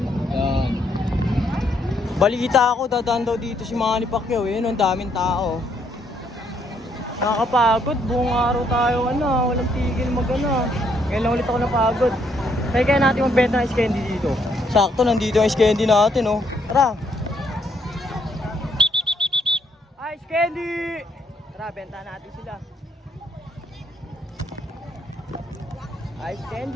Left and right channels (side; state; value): both; normal; correlation 0.71